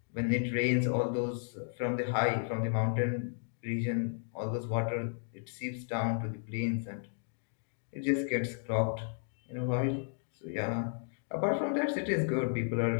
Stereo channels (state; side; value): silent; right; digital silence